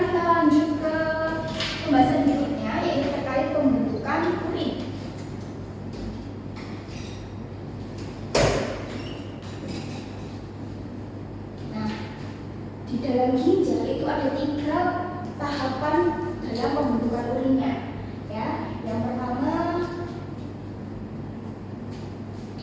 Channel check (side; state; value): both; identical; correlation 1.00